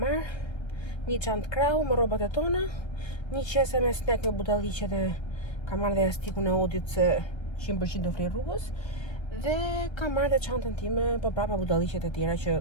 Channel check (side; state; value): right; late; 1.3 ms